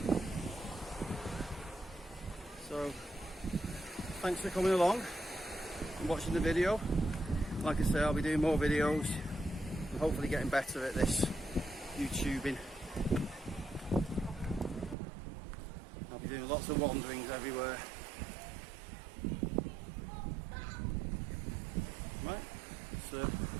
So, thanks for coming along and watching the video. Like I say, I'll be doing more videos and hopefully getting better at this YouTubing. I'll be doing lots of wanderings everywhere. Right, so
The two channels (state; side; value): drops out; left; at 15.0 s